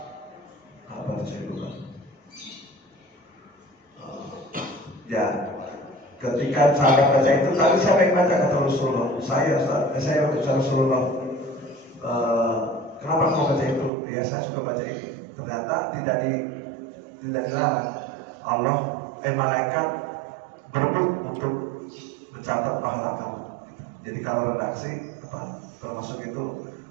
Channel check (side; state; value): left; drops out; at 13.9 s